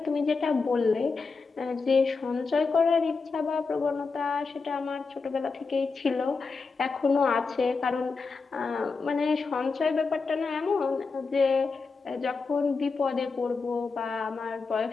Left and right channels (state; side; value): quieter; right; 4.5 dB